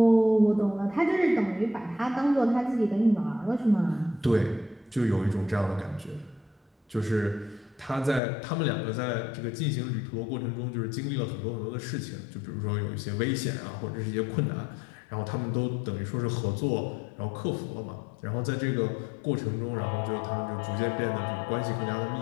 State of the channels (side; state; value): right; drops out; at 8.2 s